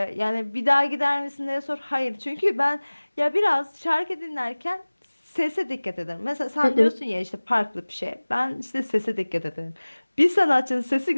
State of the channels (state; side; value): inverted; both; correlation -1.00